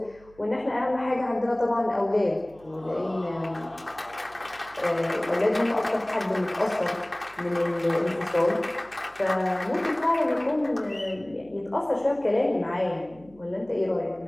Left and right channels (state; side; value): noise; right; hum, 26 dB below the sound